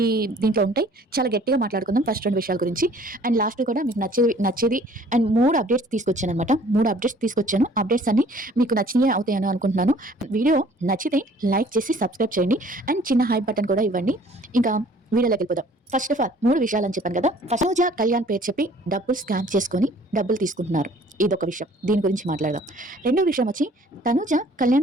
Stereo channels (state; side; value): normal; both; correlation 0.54